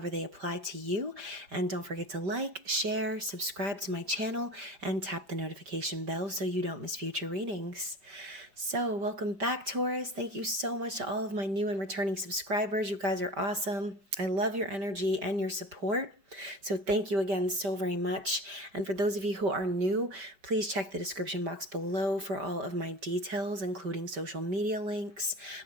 they apply to you. And don't forget to like, share, subscribe to my channel, and tap the notification bell so you don't miss future readings. So welcome back, Taurus. Thank you so much to all of my new and returning subscribers. You guys are awesome. I love your energy and your support. So thank you again so very much. And for those of you who are new, please check the description box below for all of my details, including social media links,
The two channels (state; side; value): late; left; 5.1 ms